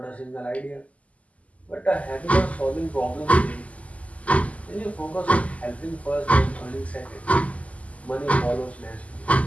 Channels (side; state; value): right; late; 0.069 ms